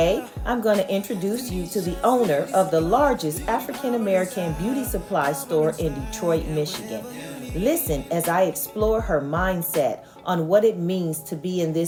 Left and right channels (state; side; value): identical; both; correlation 1.00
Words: I'm going to introduce you to the owner of the largest African American beauty supply store in Detroit, Michigan. Listen as I explore her mindset on what it means to be in